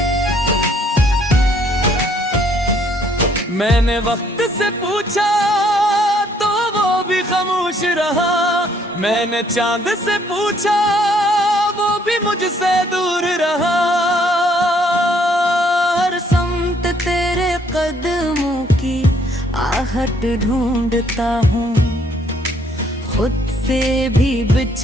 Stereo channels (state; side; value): normal; both; correlation 0.65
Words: मैंने वक्त से पूछा तो वो भी खामोश रहा। मैंने चांद से पूछा वो भी मुझसे दूर रहा। हर समत तेरे कदमों की आहट ढूंढता हूँ, खुद से भी